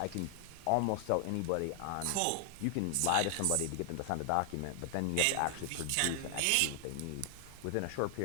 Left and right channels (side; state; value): both; different; correlation 0.00